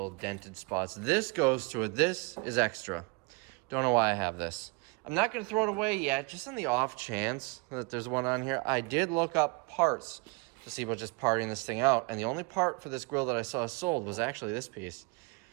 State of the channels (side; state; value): left; quieter; 28.6 dB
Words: dented spots. This goes to it. This is extra. Don't know why I have this. I'm not going to throw it away yet, just on the off chance that there's one on here. I did look up parts to see about just parting this thing out, and the only part for this grill that I saw sold was actually this piece.